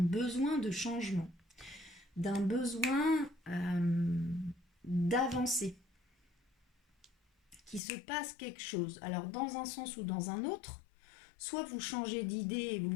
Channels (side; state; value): right; drops out; at 7.8 s